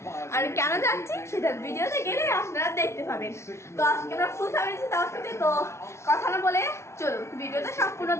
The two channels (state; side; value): late; right; 0.13 ms